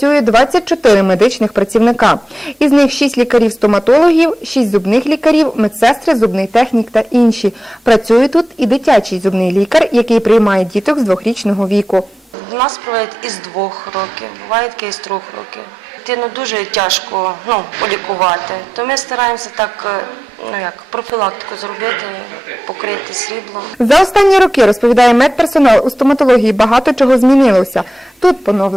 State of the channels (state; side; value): normal; both; correlation 0.91